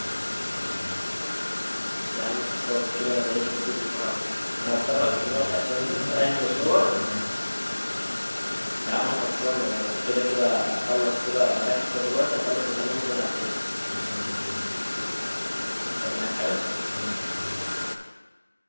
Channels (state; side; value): inverted; both; correlation -1.00